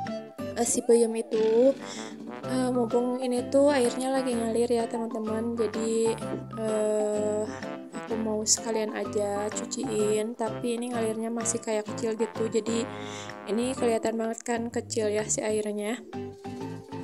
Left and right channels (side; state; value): both; identical; correlation 1.00